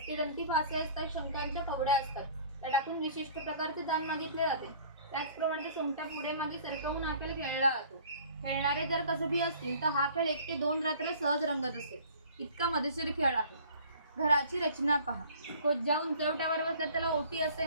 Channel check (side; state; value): both; inverted; correlation -0.50